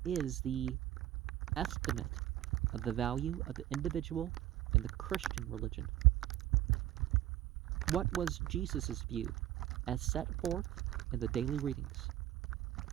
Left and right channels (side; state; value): left; quieter; 13.5 dB